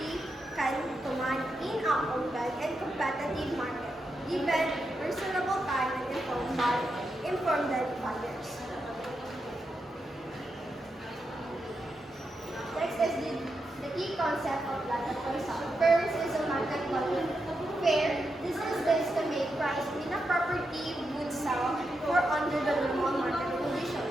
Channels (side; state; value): both; normal; correlation 0.86